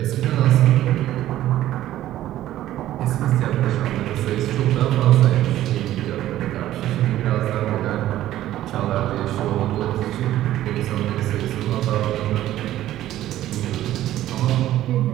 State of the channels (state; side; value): quieter; left; 13.6 dB